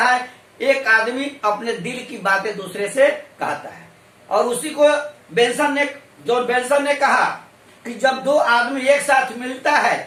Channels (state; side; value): identical; both; correlation 1.00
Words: एक आदमी अपने दिल की बातें दूसरे से कहता है। और उसी को जॉन बेंसन ने कहा कि जब दो आदमी एक साथ मिलता है